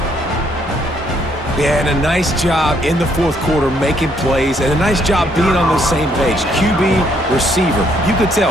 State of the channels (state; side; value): normal; both; correlation 0.69